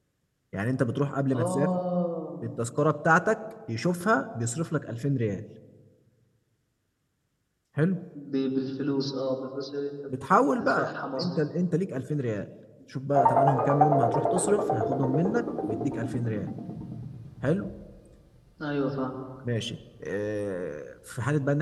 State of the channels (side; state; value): both; identical; correlation 1.00